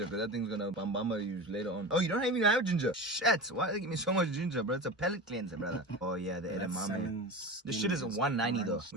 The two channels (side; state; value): both; normal; correlation 0.29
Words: because that thing's gonna bambama you later on. Oh, you don't even have ginger. Shit. Why do they give me so much ginger, bro? It's a palate cleanser, brother. Oh, yeah, the edamame. This shit is 190 though,